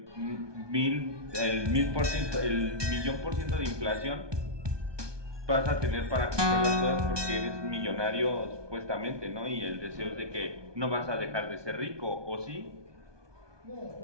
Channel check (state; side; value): late; left; 1.2 ms